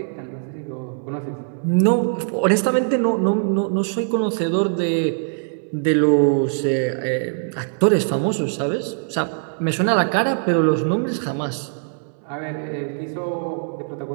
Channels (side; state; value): left; silent; 64 dB below the other